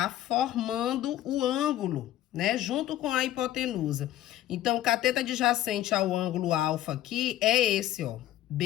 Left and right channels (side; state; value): right; quieter; 13.4 dB